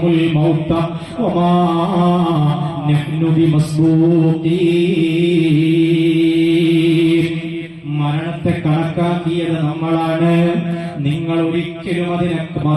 മൗത വമാ നഹ്നു ബിമസ്ബൂഖീൻ. മരണത്തെ കണക്കാക്കിയത് നമ്മളാണ്, നിങ്ങൾ ഒരിക്കലും അതിനെ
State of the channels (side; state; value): both; identical; correlation 1.00